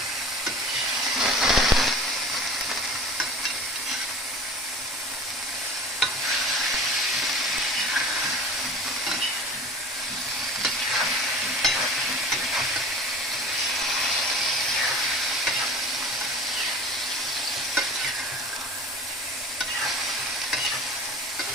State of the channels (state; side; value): normal; both; correlation 0.40